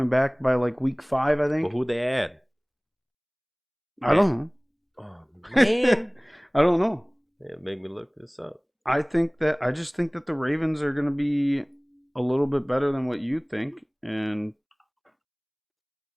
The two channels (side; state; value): both; identical; correlation 1.00